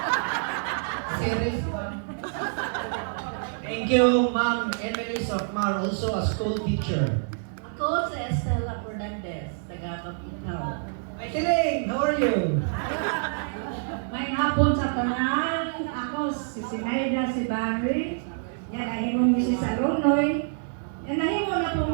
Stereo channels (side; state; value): left; silent; digital silence